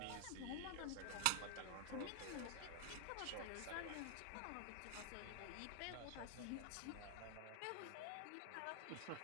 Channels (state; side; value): different; both; correlation 0.00